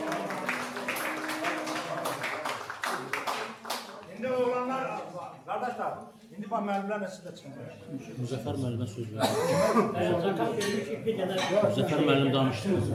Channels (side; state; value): both; identical; correlation 1.00